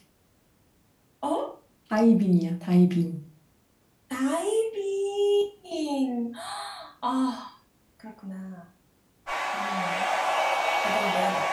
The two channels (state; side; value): identical; both; correlation 1.00